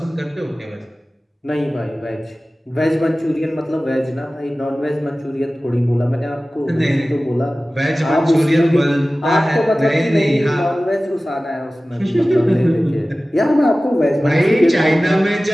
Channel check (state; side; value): normal; both; correlation 0.97